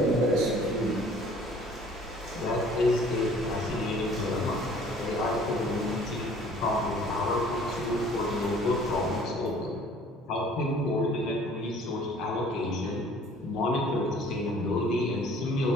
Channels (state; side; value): normal; both; correlation 0.53